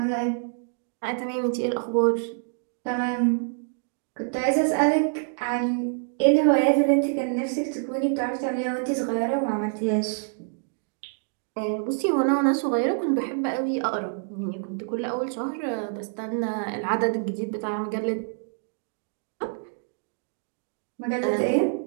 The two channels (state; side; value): silent; left; digital silence